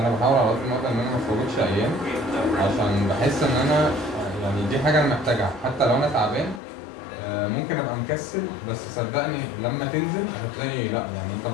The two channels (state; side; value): drops out; right; at 6.6 s